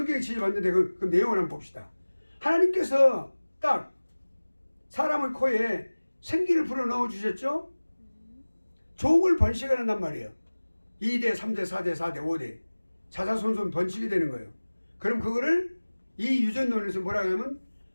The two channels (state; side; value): inverted; both; correlation -1.00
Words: 지지받는데 그 내용을 한번 봅시다. 하나님께서 딱 사람의 코에 생기를 불어넣어 주셨죠? 종을 번식을 한단 말이에요. 2대, 3대, 4대, 4대, 5대 자자손손 번식이 되는 거예요. 그럼 그거를 이 유전론에서 뭐라고 하냐면